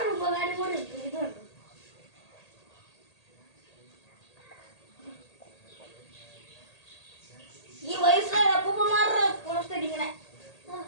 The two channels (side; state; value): right; late; 1.8 ms